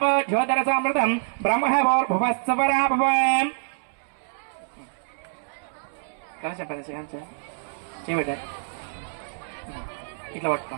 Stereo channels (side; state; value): left; silent; 61 dB below the other